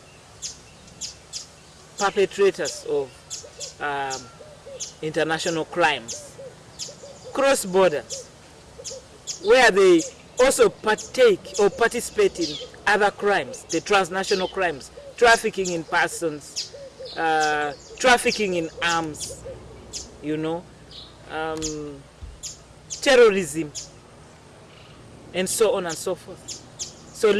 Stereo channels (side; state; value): both; identical; correlation 1.00